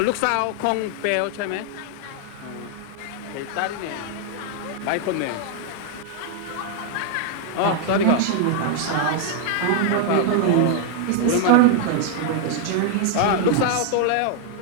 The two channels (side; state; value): both; different; correlation 0.00